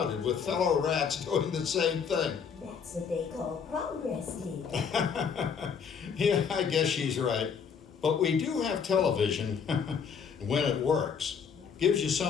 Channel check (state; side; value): quieter; right; 6.6 dB